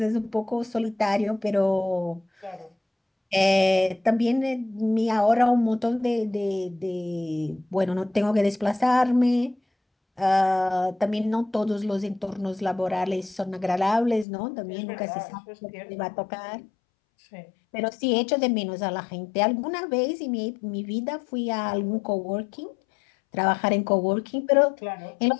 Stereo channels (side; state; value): right; drops out; at 14.2 s